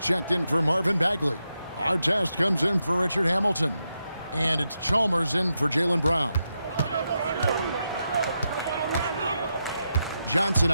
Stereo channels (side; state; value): both; inverted; correlation -0.86